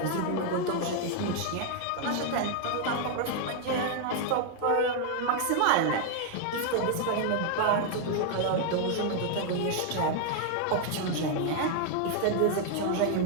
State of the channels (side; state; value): both; different; correlation 0.00